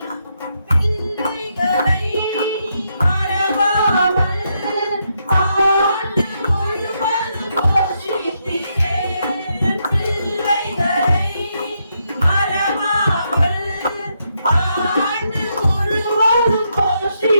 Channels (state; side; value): inverted; both; correlation -0.79